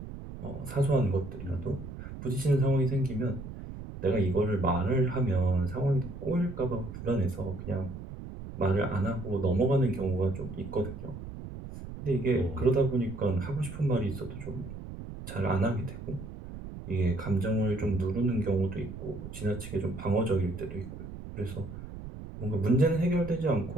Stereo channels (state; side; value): noise; right; rumble, 11 dB below the sound